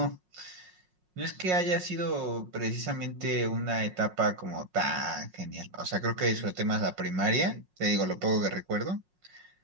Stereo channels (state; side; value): late; left; 5.5 ms